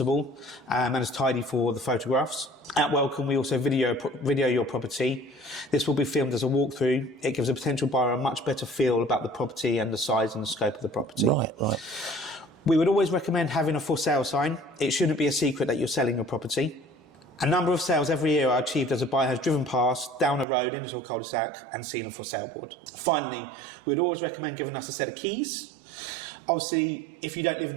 and as tidy for the photographs. At Welcome, we also video your property. This will be filmed as a walkthrough. It gives a potential buyer a much better feel about the property and the size and the scope of the property. Right. We would always recommend having a for sale sign. It shouldn't be a secret that you're selling your property. A number of sales every year are achieved as a buyer has driven past, down a road, into a cul-de-sac and seen a for sale board. Finally, we'd always recommend giving us a set of keys. Obviously, if you don't live in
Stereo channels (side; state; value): left; drops out; at 20.5 s